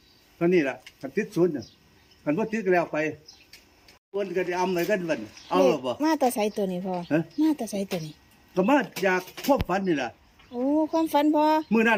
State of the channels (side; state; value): both; identical; correlation 1.00